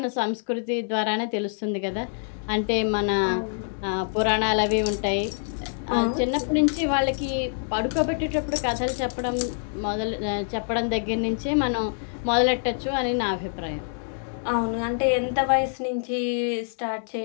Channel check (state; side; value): silent; right; digital silence